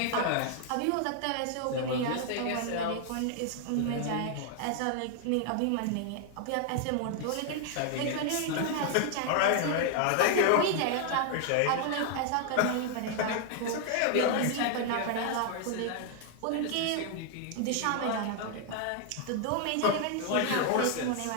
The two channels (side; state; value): both; different; correlation 0.00